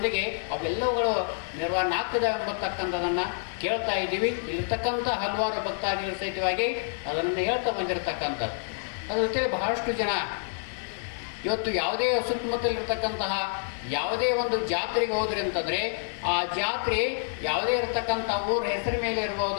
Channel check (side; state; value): right; silent; digital silence